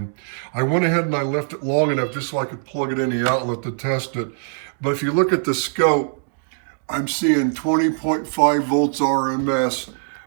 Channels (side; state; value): left; silent; digital silence